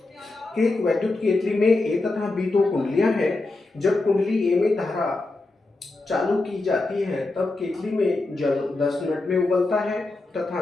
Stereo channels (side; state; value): right; quieter; 3.2 dB